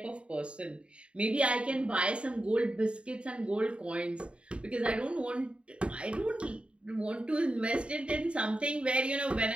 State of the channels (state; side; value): late; left; 0.057 ms